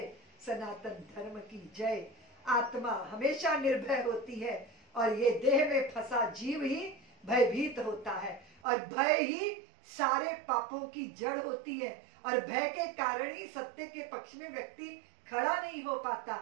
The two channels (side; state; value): left; drops out; at 8.6 s